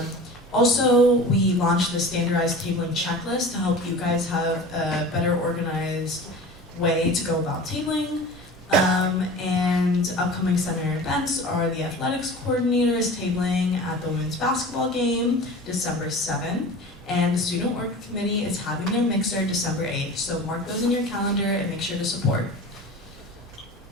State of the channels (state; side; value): normal; both; correlation 0.37